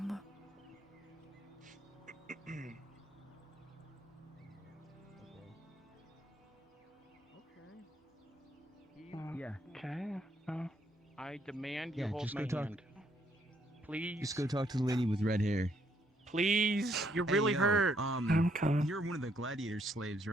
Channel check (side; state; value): both; normal; correlation 0.71